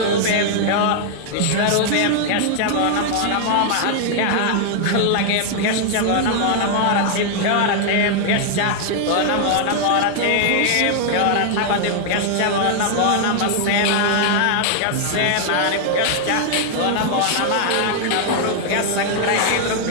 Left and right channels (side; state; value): both; different; correlation 0.00